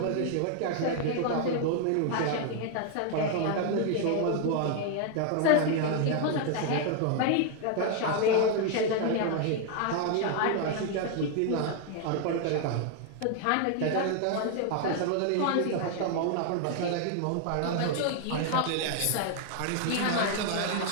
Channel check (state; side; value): different; both; correlation 0.00